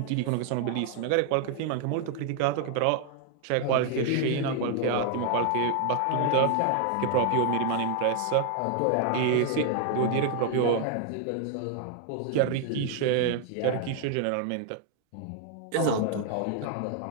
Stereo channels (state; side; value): different; both; correlation 0.00